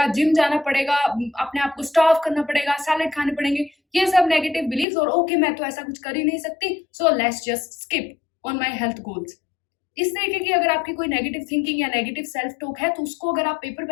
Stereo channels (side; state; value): right; drops out; at 4.9 s